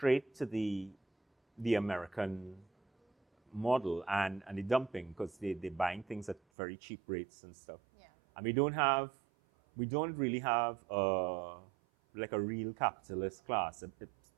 to the American model and the dumping, because they're buying things at very cheap rates and stuff. And we don't really have a like a real capitalist class.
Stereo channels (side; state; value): left; drops out; at 6.4 s